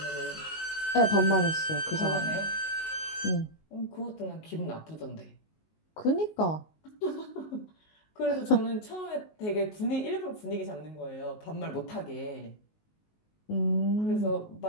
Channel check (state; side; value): late; right; 19 ms